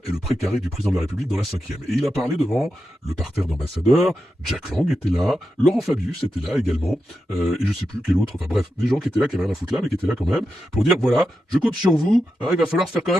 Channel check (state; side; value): normal; both; correlation 0.88